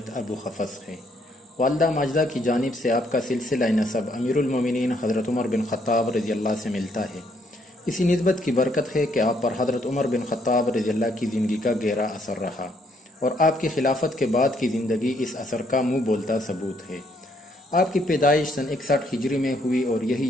ابو حفص ہے۔ والدہ ماجدہ کی جانب سے آپ کا سلسلہ نسب امیر المومنین حضرت عمر بن خطاب رضی اللہ سے ملتا ہے۔ اسی نسبت کی برکت ہے کہ آپ پر حضرت عمر بن خطاب رضی اللہ کی زندگی کا گہرا اثر رہا اور آپ کی خلافت کے بعد کی زندگی اس اثر کا منہ بولتا ثبوت ہے۔ آپ کی پیدائش سن 61 ہجری میں ہوئی اور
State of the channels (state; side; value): normal; both; correlation 0.70